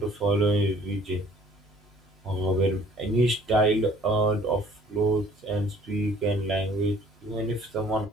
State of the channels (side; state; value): both; normal; correlation 0.55